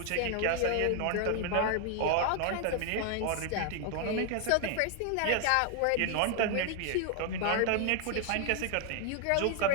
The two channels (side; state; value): both; different; correlation 0.00